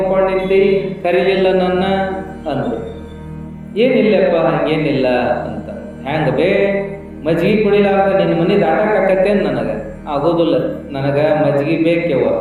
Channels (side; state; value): both; identical; correlation 1.00